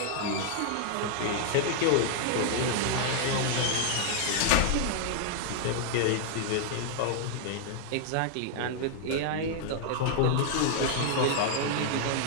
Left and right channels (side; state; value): both; different; correlation 0.00